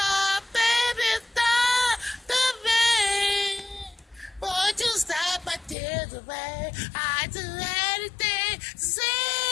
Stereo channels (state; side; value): drops out; right; at 5.8 s